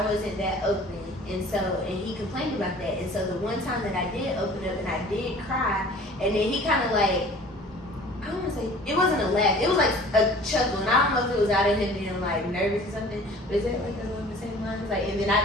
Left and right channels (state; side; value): normal; both; correlation 0.47